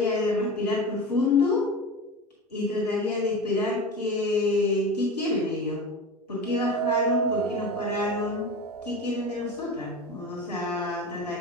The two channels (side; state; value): both; normal; correlation 0.29